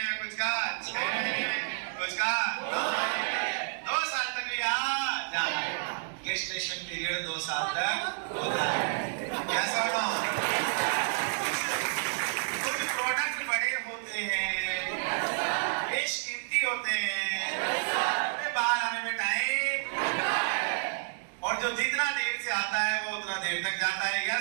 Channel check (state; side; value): silent; left; digital silence